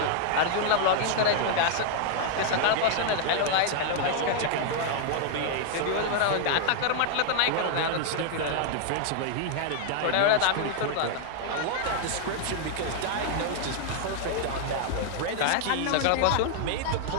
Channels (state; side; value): different; both; correlation 0.00